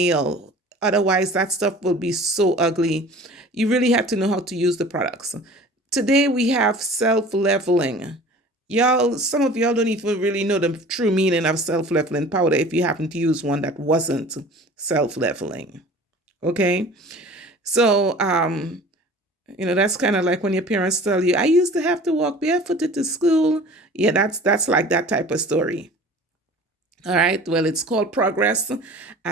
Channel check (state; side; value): normal; both; correlation 0.44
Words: Otherwise, that stuff will be so ugly. You really have to know how to use the products. Today, we have self-leveling. Y'all, some of y'all don't even really know the true meaning of self-leveling powder if you happen to use one that wasn't self-leveling. Okay? So, that's kind of like when your parents tell you, I used to have to walk barefooted to school. Yeah, that's like that type of story. All right, well, it's called progress.